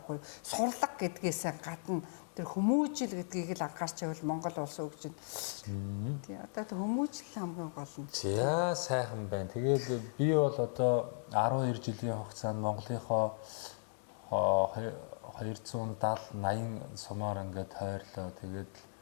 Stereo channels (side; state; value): right; silent; digital silence